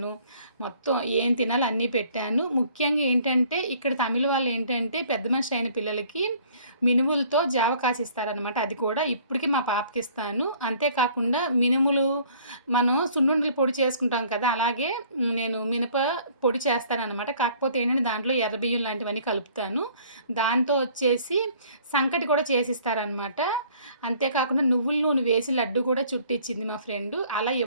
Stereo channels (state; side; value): inverted; both; correlation -0.56